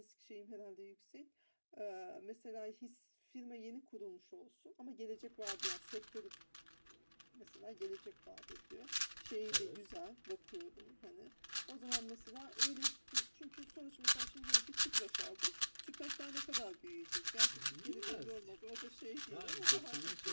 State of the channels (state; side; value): inverted; both; correlation -1.00